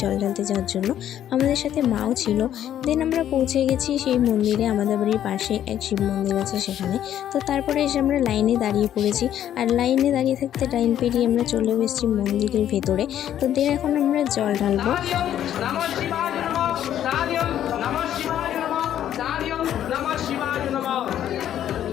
জল ঢালতে যাওয়ার জন্য। আমাদের সাথে মাও ছিল। দেন আমরা পৌঁছে গেছি সেই মন্দিরে। আমাদের বাড়ির পাশে এক শিব মন্দির আছে সেখানে। তো তারপরে এসে আমরা লাইনে দাঁড়িয়ে পড়েছি। আর লাইনে দাঁড়িয়ে থাকতে লাইন পেরিয়ে আমরা চলে এসেছি মন্দিরের ভেতরে। তো দেন এখন আমরা জল ঢালবো।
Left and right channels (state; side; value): quieter; right; 10.9 dB